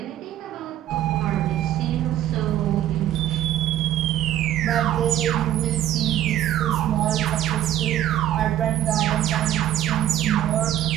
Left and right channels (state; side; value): quieter; left; 12.2 dB